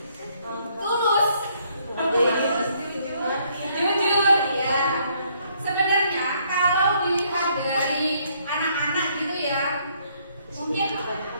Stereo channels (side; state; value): both; inverted; correlation -0.68